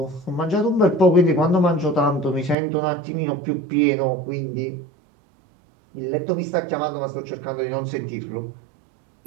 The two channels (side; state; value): left; drops out; at 2.6 s